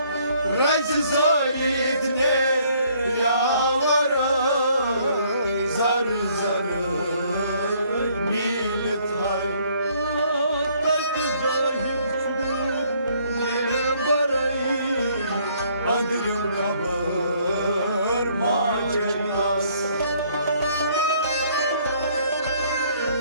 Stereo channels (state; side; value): inverted; both; correlation -0.64